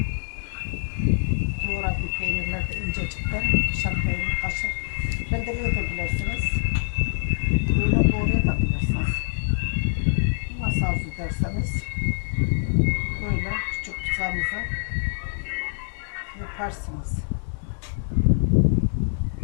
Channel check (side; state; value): right; silent; digital silence